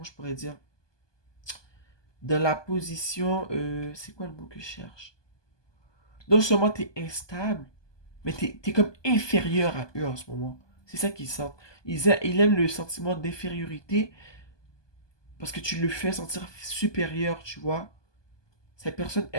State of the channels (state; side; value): late; right; 1.2 ms